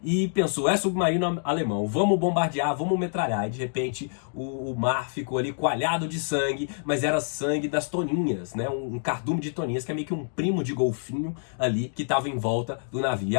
e pensou, é submarino alemão, vamos bombardear, vamos metralhar. E de repente o mar ficou ali coalhado de sangue, mas era sangue das toninhas, né? Um cardume de toninhas, que é meio que um primo de golfinho ali, que estava em volta do navio. E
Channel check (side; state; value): right; silent; digital silence